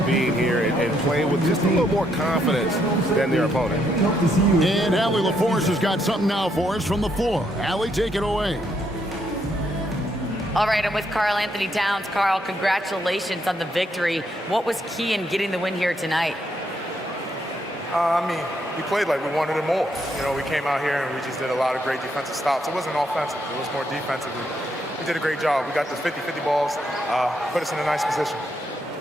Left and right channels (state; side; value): normal; both; correlation 0.75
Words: being here and playing with just a little more confidence than their opponent. And Allie LaForce has got something now for us from the floor. Allie, take it away. All right, I'm with Karl Anthony Towns. Karl, congratulations on the victory. What was key in getting the win here tonight? I mean, we played like we wanted it more. You know, we came out here and we just did a lot of great defensive stops. It wasn't offensive. It was more defensive. We did a great job. We got the 50-50 balls, put us in a nice position.